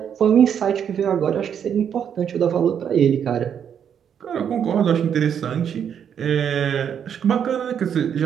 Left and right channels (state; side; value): quieter; left; 8.3 dB